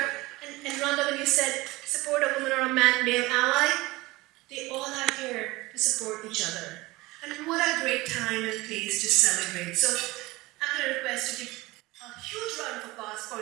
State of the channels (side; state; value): left; quieter; 20.8 dB